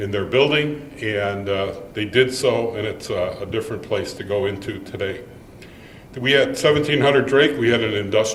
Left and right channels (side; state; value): both; identical; correlation 1.00